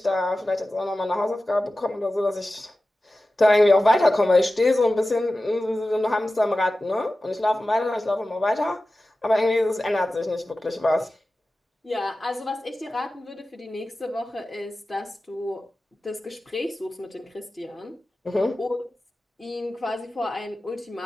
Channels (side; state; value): both; normal; correlation 0.95